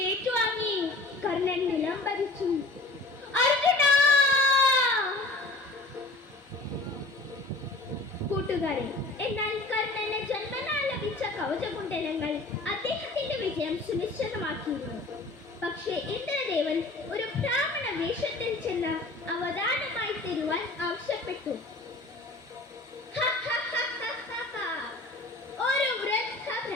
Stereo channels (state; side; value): quieter; right; 3.0 dB